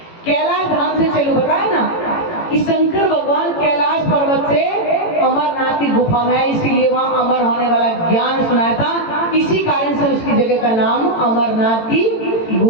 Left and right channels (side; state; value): right; late; 18 ms